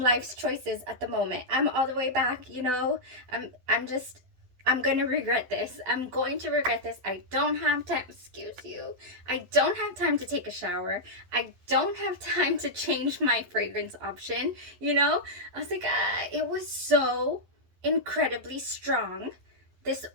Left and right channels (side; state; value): left; late; 11 ms